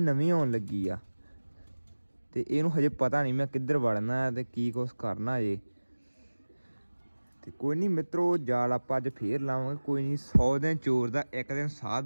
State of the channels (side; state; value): both; inverted; correlation -1.00